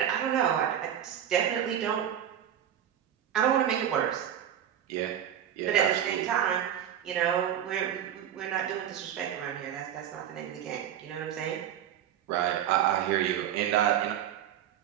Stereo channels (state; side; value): quieter; left; 10.1 dB